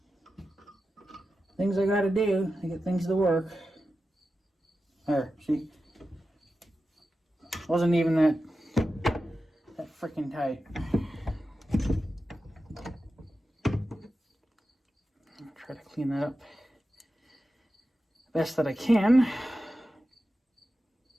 things I gotta do to get things to work. There, see? Wasn't even that freaking tight. Try to clean that up best that I can.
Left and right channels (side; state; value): both; normal; correlation 0.92